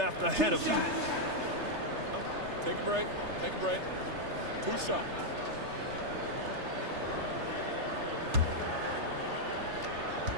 ahead of them. Take a break. Take a break. 2 shots.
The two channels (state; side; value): late; left; 3.3 ms